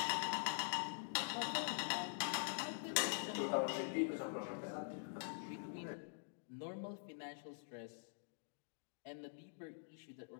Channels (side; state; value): right; silent; digital silence